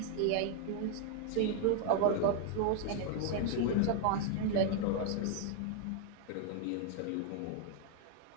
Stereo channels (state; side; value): different; both; correlation 0.00